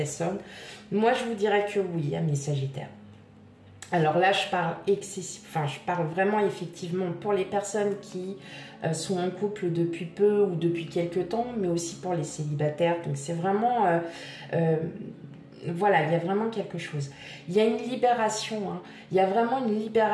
Moi, je vous dirais que oui, amis Sagittaires. Alors là, je parle vraiment effectivement pour les personnes qui sont en couple depuis peu ou depuis quelques temps, mais aussi pour les célibataires. Donc c'est vraiment, voilà, il y a vraiment quelque chose. Il y a une libération, hein. Il y a vraiment une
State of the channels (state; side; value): identical; both; correlation 1.00